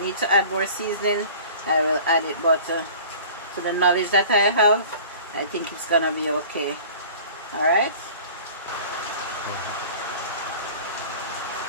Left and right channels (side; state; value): both; inverted; correlation -0.44